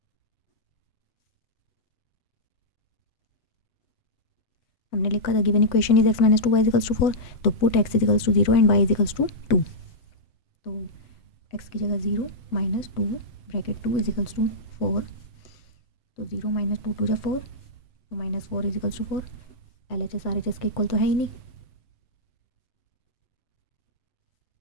हमने लिखा the given equation is x minus 2 y equals to 4, तो put x equals to 0 and y equals to 2। तो x की जगह 0 माइनस 2 ब्रैकेट 2 इजिकल्स टू 4, तो 0 माइनस 2 2 जा 4, तो minus 4 equals to 4। LHS RHS के इक्वल तो है ही नहीं,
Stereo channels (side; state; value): right; late; 7.8 ms